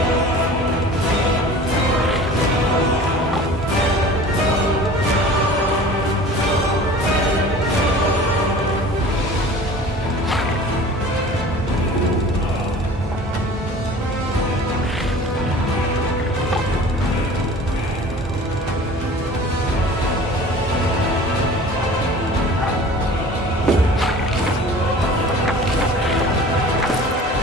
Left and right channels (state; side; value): normal; both; correlation 0.43